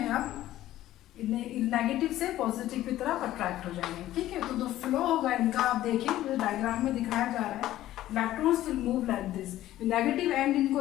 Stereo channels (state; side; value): quieter; right; 14.1 dB